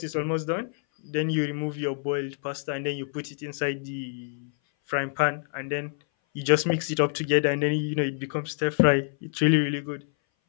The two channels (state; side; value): silent; right; 58 dB below the other